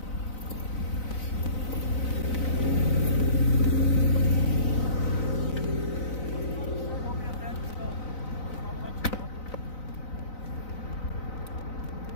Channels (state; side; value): late; right; 4.0 ms